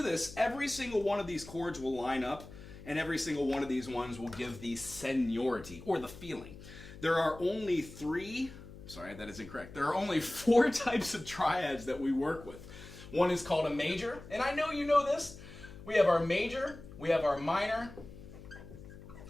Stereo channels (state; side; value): noise; left; hum, 16 dB below the sound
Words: this, every single one of these chords will line up, and every single one of these ones will give the seniority, or the feeling. There are only 4 types of triads that we work with. One is called a major, and I know you know this. We have our major, we have our minor,